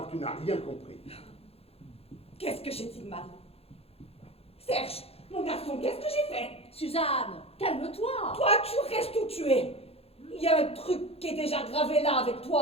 que tu n'as rien compris. Qu'est-ce que j'ai dit de mal? Serge, mon garçon, qu'est-ce que j'ai fait? Suzanne, calme-toi. Toi, tu restes où tu es. Il y a un truc qui est déjà gravé là avec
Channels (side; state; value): right; late; 0.29 ms